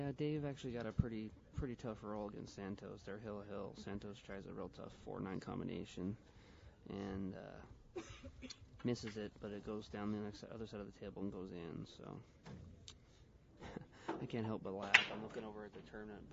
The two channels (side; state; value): both; identical; correlation 1.00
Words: Dave actually got a pretty tough roll against Santos. They're hill. Santos tries a real tough 4-9 combination and misses it, but it goes down the other side of the table and goes in. So I can't help but laugh. I'm looking over at the tournament